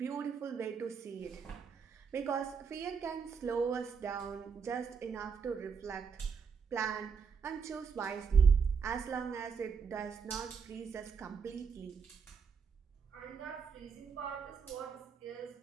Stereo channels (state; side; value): quieter; left; 6.0 dB